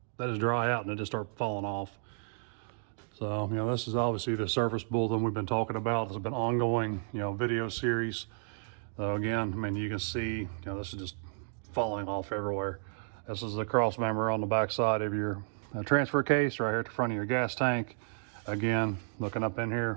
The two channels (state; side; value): silent; left; digital silence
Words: out and they just start falling off. So, this is obviously the surface bulletin we've been talking about. This has been ongoing, video series. So again, I mean, you can see, this is just falling off everywhere. This is the Crossmember on the back side of your transfer case right here at the front of your gas tank. Again, looking up in